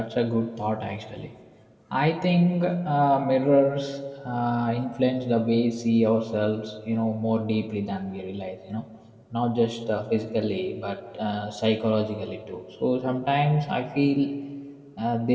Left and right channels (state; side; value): identical; both; correlation 1.00